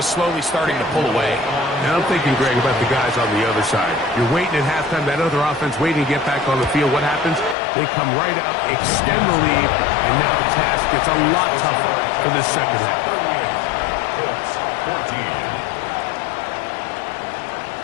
slowly starting to pull away. Now I'm thinking, Greg, about the guys on the other side. You're waiting at halftime, that other offense waiting to get back on the field. What happens? They come right out, extend the lead, and now the task gets a lot tougher for this second half. 38. Colts 14.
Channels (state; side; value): drops out; right; at 7.6 s